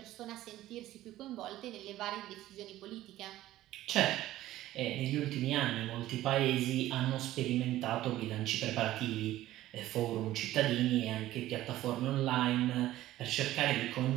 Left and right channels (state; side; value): quieter; left; 14.9 dB